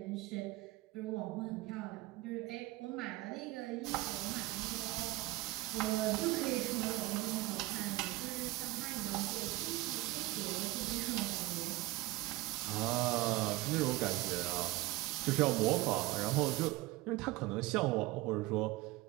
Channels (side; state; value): left; quieter; 19.2 dB